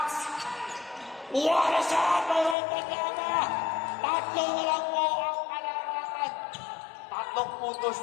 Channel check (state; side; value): drops out; right; at 2.6 s